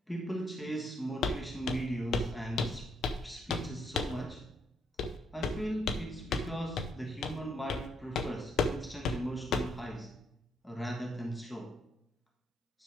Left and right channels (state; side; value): normal; both; correlation 0.73